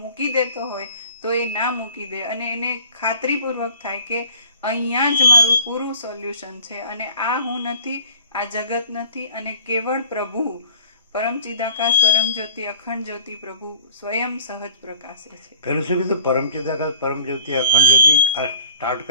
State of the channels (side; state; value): both; inverted; correlation -0.53